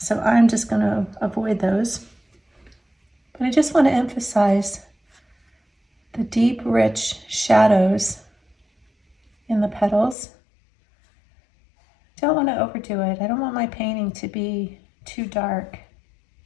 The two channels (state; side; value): drops out; right; at 10.2 s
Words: I'm just going to avoid those. But I just want to emphasize the deep, rich shadows in the petals. Don't want to overdo it. I don't want my painting to be too dark.